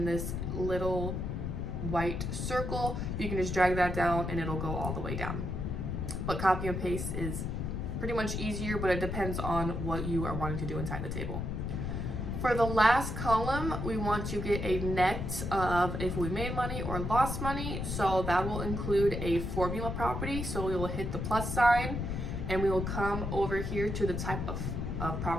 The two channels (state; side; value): noise; left; rumble, 3 dB below the sound